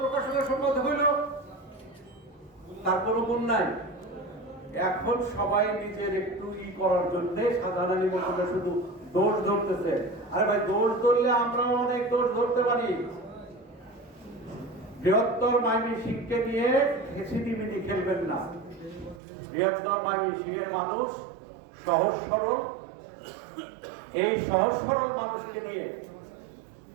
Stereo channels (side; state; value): left; drops out; at 19.2 s